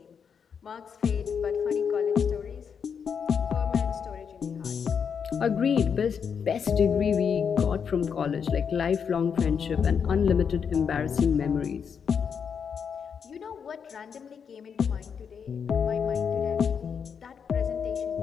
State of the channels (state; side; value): quieter; right; 6.8 dB